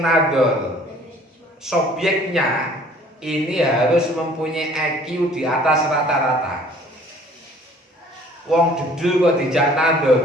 nadhur subjeknya ini harus mempunyai IQ di atas rata-rata. Wong dedul kok dijak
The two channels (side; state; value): both; normal; correlation 0.54